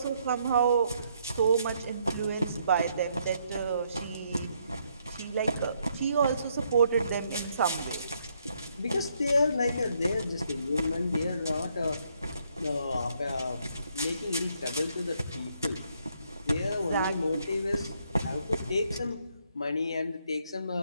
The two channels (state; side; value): inverted; both; correlation -0.73